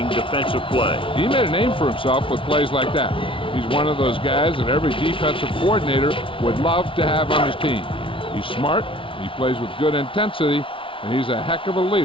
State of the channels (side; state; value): right; late; 0.25 ms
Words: defensive play. He made a name for himself with plays like that. He's one of those guys that every defensive coordinator would love to have on his team. He's smart, he plays with good intensity, and he's a heck of a